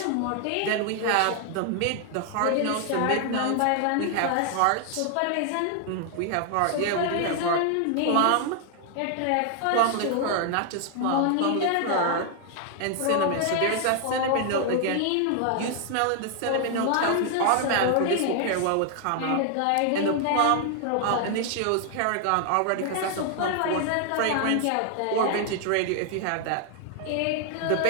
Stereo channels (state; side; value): different; both; correlation 0.00